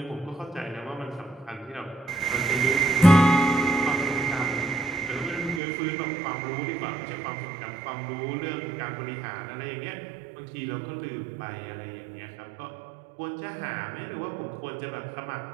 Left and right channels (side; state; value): left; drops out; at 5.6 s